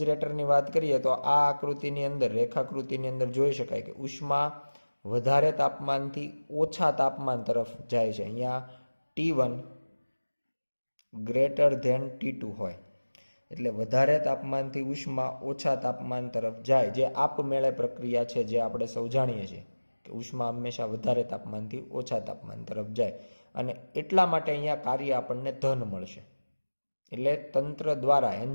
વાત કરીએ તો આ આકૃતિની અંદર, રેખાકૃતિની અંદર જોઈ શકાય કે ઉષ્મા વધારે તાપમાનથી ઓછા તાપમાન તરફ જાય છે. અહીંયા T1 ગ્રેટર ધેન T2 હોય એટલે વધારે તાપમાનથી ઉષ્મા ઓછા તાપમાન તરફ જાય, જે આપમેળે પ્રક્રિયા છે જે આપણે સૌ જાણીએ છીએ કે ઉષ્મા હંમેશા વધારે તાપમાનથી ઓછા તાપમાન તરફ જાય. અને એટલા માટે અહીંયા કાર્ય આપણને ધન મળશે, એટલે તંત્ર દ્વારા,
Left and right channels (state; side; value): inverted; both; correlation -1.00